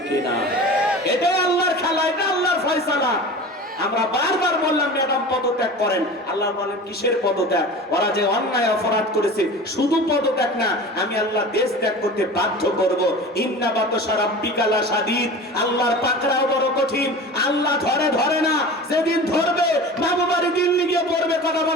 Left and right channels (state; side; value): normal; both; correlation 0.35